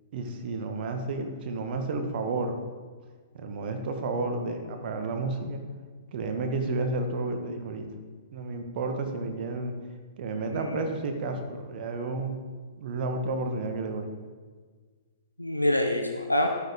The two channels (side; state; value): both; inverted; correlation -0.48